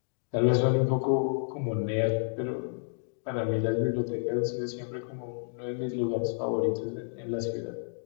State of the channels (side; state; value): right; silent; digital silence